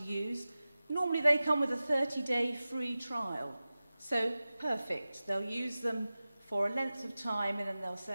use, normally they come with a 30-day free trial. So perfect. They'll use them for a length of time and then they'll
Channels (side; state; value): both; inverted; correlation -0.96